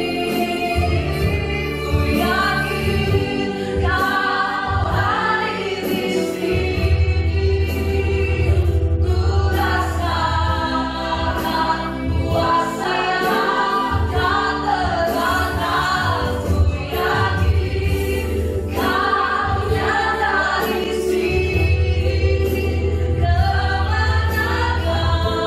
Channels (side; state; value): both; identical; correlation 1.00